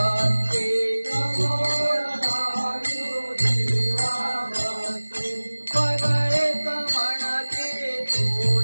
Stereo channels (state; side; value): inverted; both; correlation -1.00